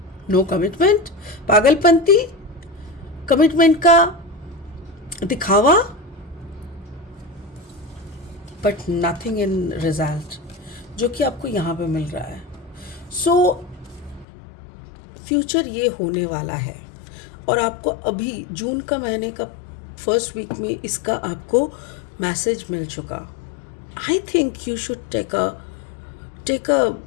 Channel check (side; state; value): right; drops out; at 14.2 s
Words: नो कमिटमेंट, पागलपंती, कमिटमेंट का दिखावा, बट नथिंग इन रिजल्ट, जो कि आपको यहाँ पे मिल रहा है। सो फ्यूचर ये होने वाला है, और आपको अभी जून का महीने का फर्स्ट वीक में इसका आपको मैसेज मिल चुका। I think you should take a